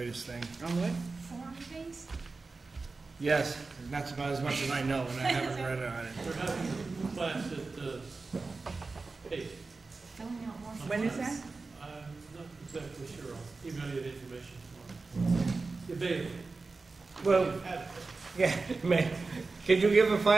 thing. On what? Form-based? Yes, that's about as much as I know, and I haven't read on it. We're having a class at, hey. Filling out more. When is that? I'm not exactly sure, I'll email you the information tomorrow. Available. Well, You've had it. yeah, man, could you give a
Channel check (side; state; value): left; quieter; 3.9 dB